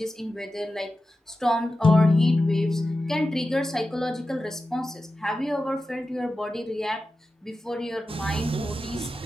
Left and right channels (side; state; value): both; normal; correlation 0.93